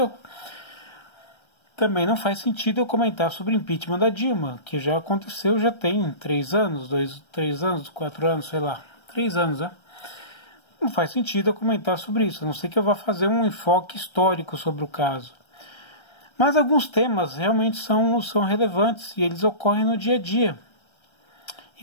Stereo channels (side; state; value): right; late; 1.3 ms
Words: Também não faz sentido eu comentar sobre o impeachment da Dilma, que já aconteceu, já tem 3 anos, 3 anos, 4 anos, sei lá, 3 anos, né? Não faz sentido eu comentar sobre isso, a não ser que eu vá fazer um enfoque histórico sobre o caso. Mas alguns temas realmente são relevantes e eles ocorrem no dia a dia.